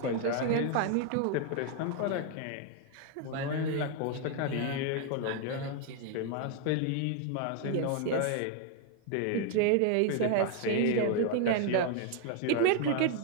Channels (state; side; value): different; both; correlation 0.00